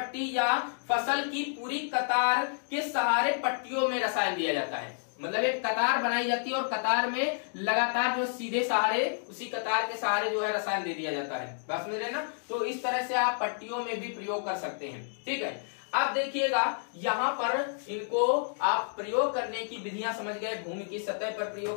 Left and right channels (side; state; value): right; silent; digital silence